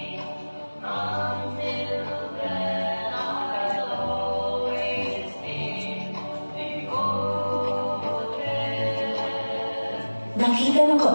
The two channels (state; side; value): inverted; both; correlation -1.00